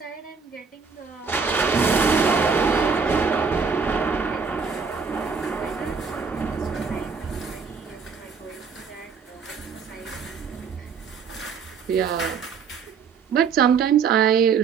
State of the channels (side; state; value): left; quieter; 5.7 dB